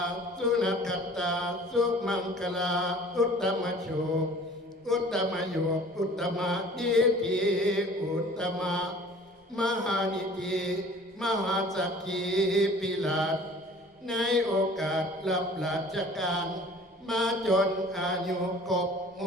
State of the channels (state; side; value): normal; both; correlation 0.48